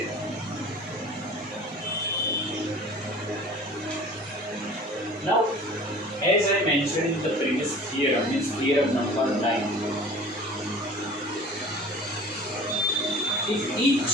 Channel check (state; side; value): normal; both; correlation 0.43